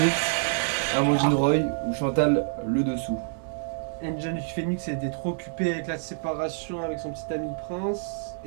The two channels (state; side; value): silent; left; 59 dB below the other